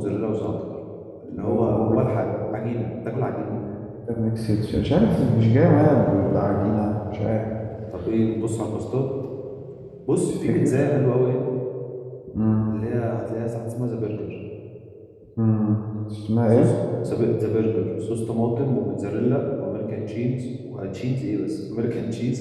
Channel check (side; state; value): both; identical; correlation 1.00